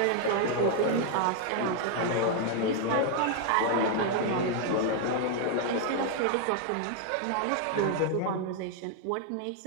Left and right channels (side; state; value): both; different; correlation 0.00